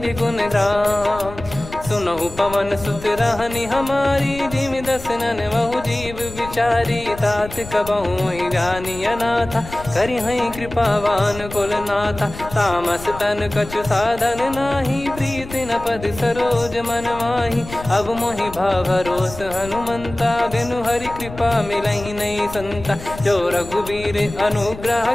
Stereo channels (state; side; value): noise; left; rumble, 14 dB below the sound